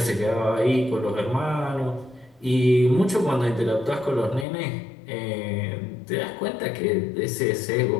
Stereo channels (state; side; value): drops out; right; at 4.5 s